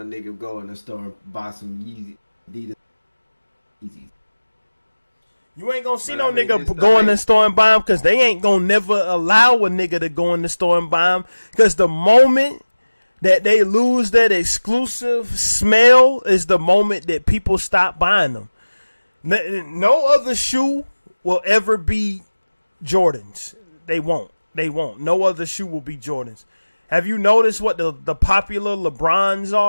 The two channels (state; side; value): inverted; both; correlation -1.00